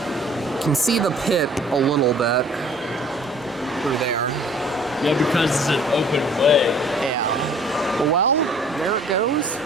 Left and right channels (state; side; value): normal; both; correlation 0.53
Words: You can see the pit a little bit through there. Yeah, because it's an open way.